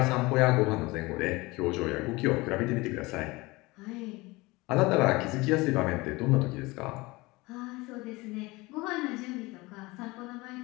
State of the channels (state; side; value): quieter; right; 22.5 dB